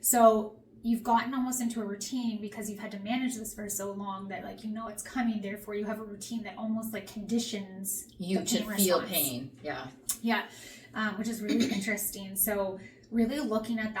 So you've gotten almost into a routine because you've had to manage this for so long that like, you know, it's coming. Therefore you have a routine that almost like conditions you to feel pain. Yeah. Yeah. Which is really interesting. So really looking at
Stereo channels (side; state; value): both; identical; correlation 1.00